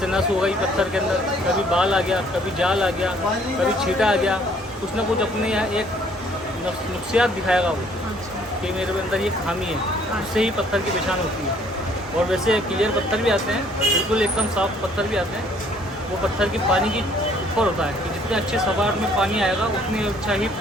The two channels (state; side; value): normal; both; correlation 0.61